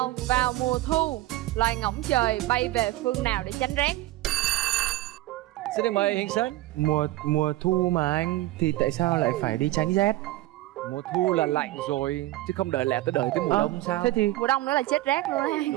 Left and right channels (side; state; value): left; quieter; 17.0 dB